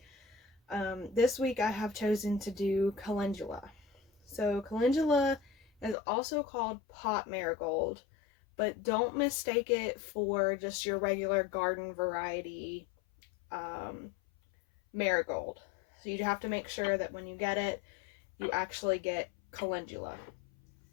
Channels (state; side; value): drops out; right; at 6.0 s